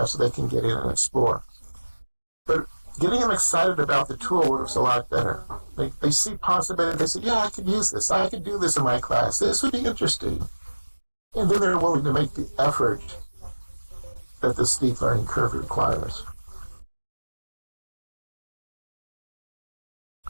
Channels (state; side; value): inverted; both; correlation -1.00